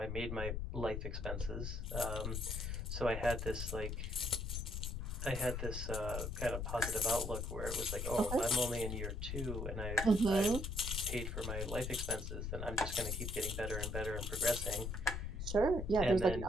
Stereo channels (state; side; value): noise; left; rumble, 4 dB below the sound